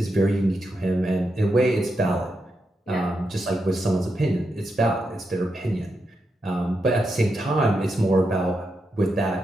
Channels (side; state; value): both; normal; correlation 0.85